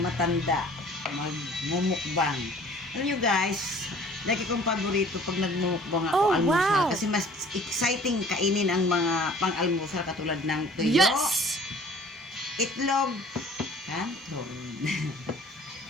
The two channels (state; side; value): normal; both; correlation 0.51